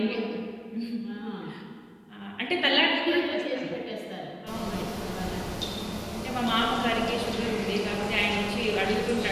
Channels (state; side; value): identical; both; correlation 1.00